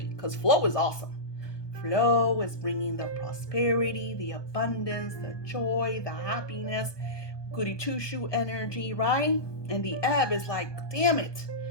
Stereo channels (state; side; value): late; right; 1.2 ms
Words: because flow is awesome. flow is bringing the prosperity, the abundance, the joy, the happiness, goody two shoe energy, right? And the ebb is like, damn it.